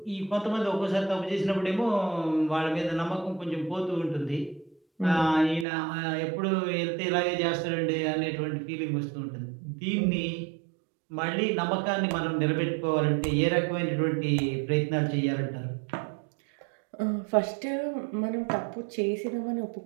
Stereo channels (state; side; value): drops out; left; at 5.7 s